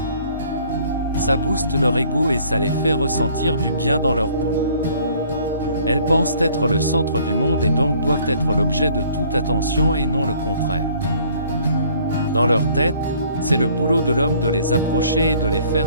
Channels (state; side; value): inverted; both; correlation -0.58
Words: Ça booste leur ego et ça les fait ressentir du bien dans leur peau. Elles pensent être le centre du monde et donc doivent être l'objet de toute attention et non le contraire. Dans leur tête, c'est le boulot de l'homme de les approcher et de les